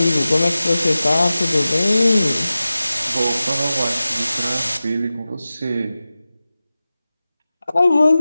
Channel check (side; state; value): both; inverted; correlation -0.96